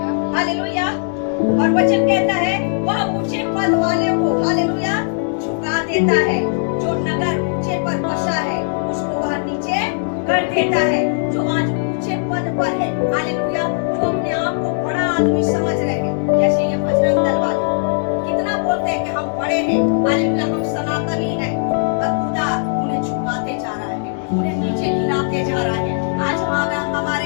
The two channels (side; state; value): right; silent; digital silence